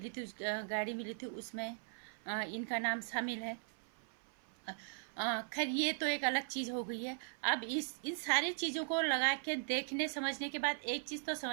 थी, गाड़ी मिली थी, उसमें इनका नाम शामिल है। खैर, ये तो एक अलग चीज़ हो गई है। अब इन सारी चीज़ों को लगा के देखने समझने के बाद एक चीज़ तो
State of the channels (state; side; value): silent; left; 52 dB below the other